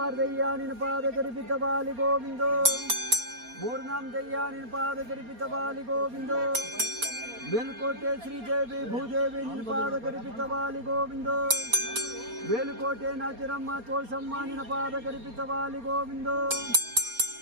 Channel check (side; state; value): left; late; 4.3 ms